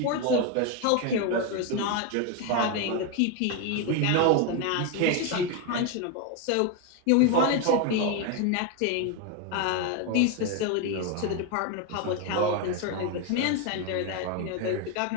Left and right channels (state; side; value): different; both; correlation 0.02